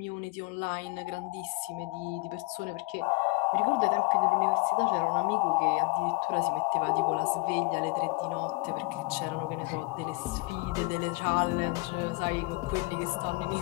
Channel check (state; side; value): quieter; right; 25.5 dB